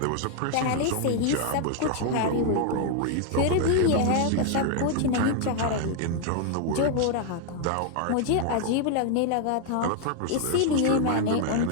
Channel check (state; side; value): different; both; correlation 0.00